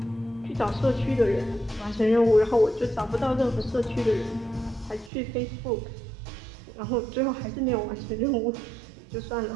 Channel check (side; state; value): left; drops out; at 5.1 s